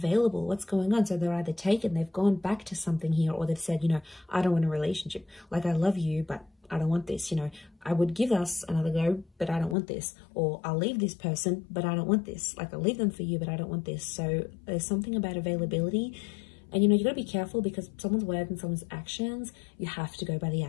What's going on? So they're either taken, they've gone back to something here, or they've said, you know, I don't want a relationship. Like, I love you, but I don't want this. You know, I would give us another go, but I don't want this. Or I'll leave this person, but I don't want this. Like, I'll leave them for you, but I don't want this. So there's something about availability. And, you know, you got to be careful because someone's word and someone's actions, you have to go by the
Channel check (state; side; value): drops out; right; at 9.8 s